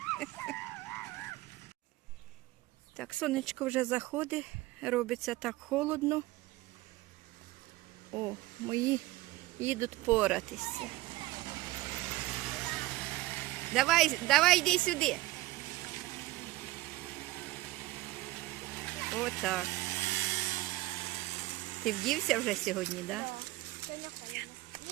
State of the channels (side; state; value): left; quieter; 18.2 dB